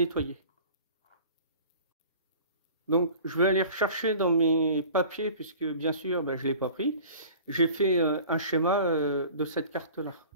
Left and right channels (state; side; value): inverted; both; correlation -0.43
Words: Donc je vais aller rechercher dans mes papiers, puisque bien sûr ben, je l'ai pas pris. J'ai fait un schéma de cette carte-là.